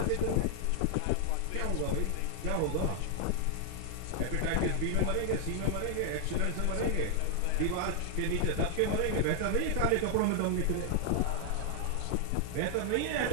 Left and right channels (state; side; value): different; both; correlation 0.00